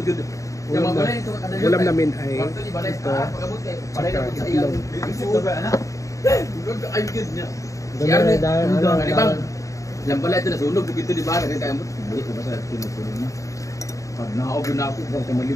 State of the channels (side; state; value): right; late; 0.16 ms